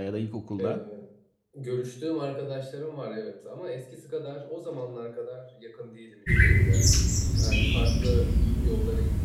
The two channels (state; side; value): identical; both; correlation 1.00